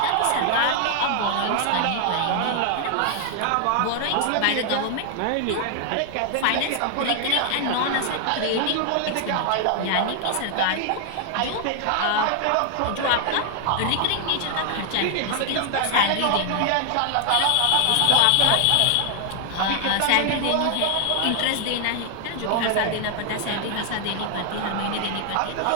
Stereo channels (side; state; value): both; different; correlation 0.00